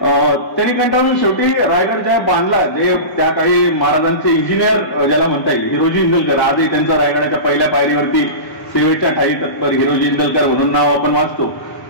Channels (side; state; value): right; late; 1.1 ms